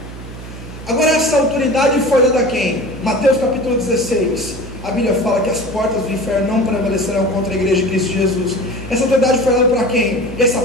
Agora essa autoridade foi dada a quem? Mateus capítulo 16. A Bíblia fala que as portas do inferno não prevalecerão contra a igreja de Cristo Jesus. Essa autoridade foi dada para quem? Essa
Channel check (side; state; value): right; noise; hum, 13 dB below the sound